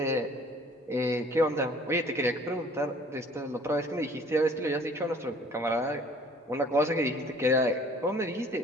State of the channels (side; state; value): both; normal; correlation 0.53